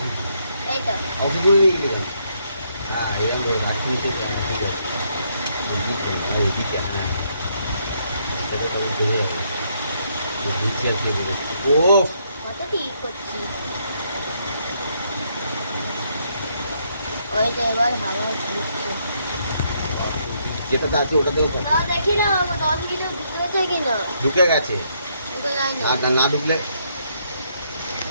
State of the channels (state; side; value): inverted; both; correlation -0.73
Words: তুই এই তো অফিসে নিয়ে গেলি কেন? হ্যাঁ এরকম ধরে রাখতে ঠিক আছে এদিকে না এদিকে হ্যাঁ তবে তবে ধরে যাবে নিচে আর কে দেবে ও কত ঠিক করছি। ওই তো এবার হাওয়া ঘুরছে। যেটাতে আছে ওটাতেও না দেখি না 10 কিলো ঢুকেছে কিনা। ঢুকে গেছে ঢুকে যায় না। আর না ঢুকলে